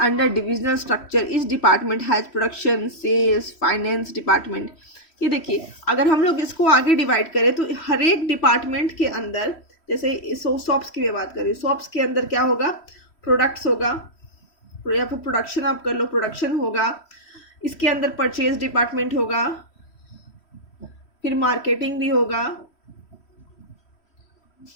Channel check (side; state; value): right; late; 3.1 ms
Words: under divisional structure. each department has production, sales, finance department. ये देखिए, अगर हम लोग इसको आगे डिवाइड करें तो हर एक डिपार्टमेंट के अंदर, जैसे सॉप्स की बात करें, सॉप्स के अंदर क्या होगा, प्रोडक्ट्स होगा, या फिर प्रोडक्शन आप कर लो, प्रोडक्शन होगा. इसके अंदर परचेज डिपार्टमेंट होगा, फिर मार्केटिंग भी होगा,